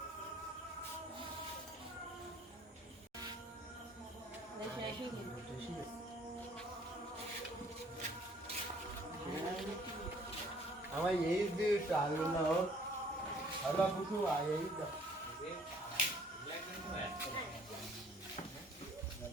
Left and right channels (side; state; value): both; normal; correlation 0.58